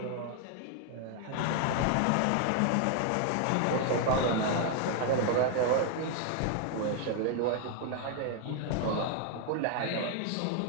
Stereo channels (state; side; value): different; both; correlation 0.00